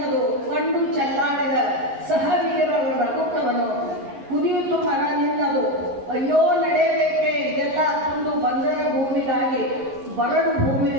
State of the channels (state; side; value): late; left; 11 ms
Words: ಕಂಡು ಚೆಲ್ಲಾಡಿದ ಸಹವೀರರ ಕುದಿಯಿತು ಮರ ನಿನ್ನದು, ಅಯ್ಯೋ ನಡೆಯಬೇಕೆ ಇದೆಲ್ಲ ತಂದು ಬಂಜರ ಭೂಮಿಗಾಗಿ ಬರಡು